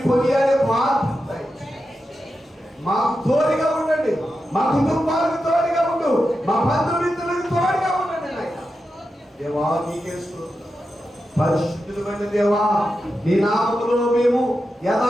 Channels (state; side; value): normal; both; correlation 0.89